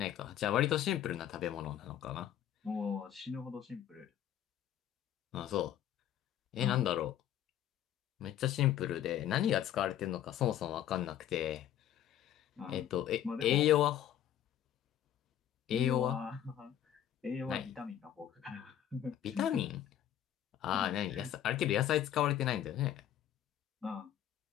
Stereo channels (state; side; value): quieter; right; 10.9 dB